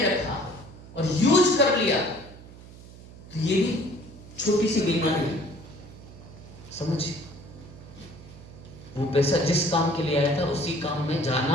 और यूज कर लिया, तो ये भी छोटी सी बीमारी है, समझिए। वो पैसा जिस काम के लिए आया था उसी काम में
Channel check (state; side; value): noise; right; hum, 18 dB below the sound